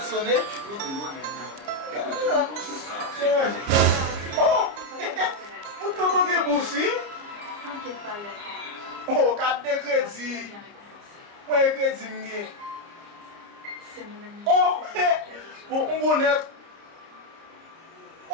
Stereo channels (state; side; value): late; left; 30 ms